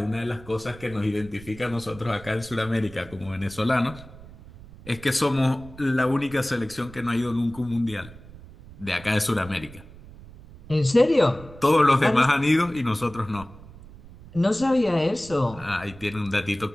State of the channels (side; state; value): right; noise; rumble, 18 dB below the sound